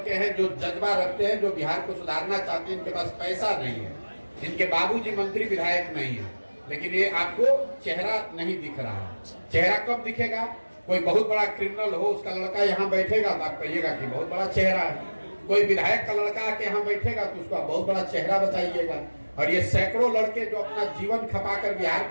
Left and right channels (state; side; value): inverted; both; correlation -1.00